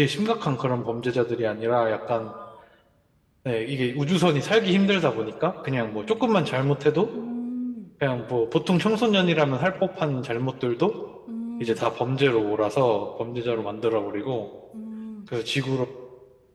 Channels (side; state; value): both; identical; correlation 1.00